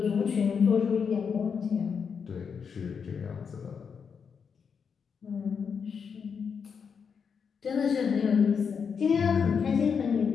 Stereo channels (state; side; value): quieter; right; 6.4 dB